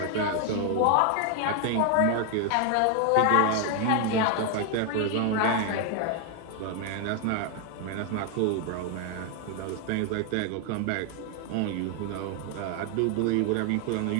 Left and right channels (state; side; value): different; both; correlation 0.01